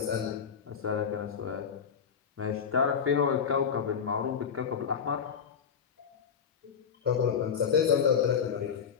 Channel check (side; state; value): right; quieter; 7.1 dB